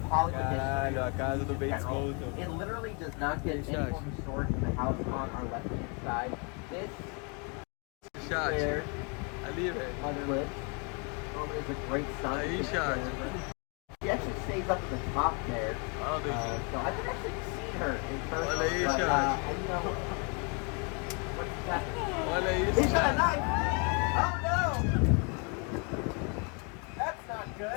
Hollywood history, a casa do Bates Motel. it literally does not get any more historic than the house on our left-hand side. This is where Ali, velho. Mother lives. Norman is a great son. Aí, chat. She actually stays up at the top there. So I've actually seen her in person. Olha aí, but, chat. you know, what's that? Olha isso, He's got a chat. knife! Oh no! That's not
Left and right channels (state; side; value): quieter; right; 34.7 dB